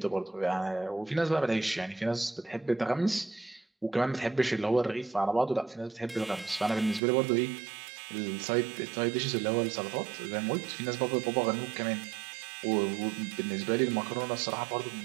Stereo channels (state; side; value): drops out; left; at 7.0 s